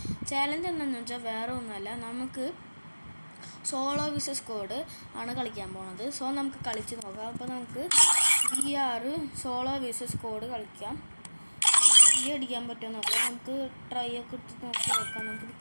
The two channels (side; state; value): both; inverted; correlation -1.00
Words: ചാലഞ്ച് എന്താണെന്ന് വെച്ചാൽ വേറെ ഒന്നുമല്ല, നമുക്ക് സോളോ വിസസ് സ്ക്വാഡ് ആണ് കളിക്കാൻ പോകുന്നത്. സോ നമുക്ക് കളിച്ച് നോക്കാം. അപ്പോൾ നമുക്ക് BR സോളോ വിസസ് സ്ക്വാഡ് കളിക്കാം. അടിക്കാൻ പറ്റുമോ നോക്കാം. നമുക്ക് ട്രൈ ഒക്കെ ഇട്ട് നോക്കാം. നമുക്ക്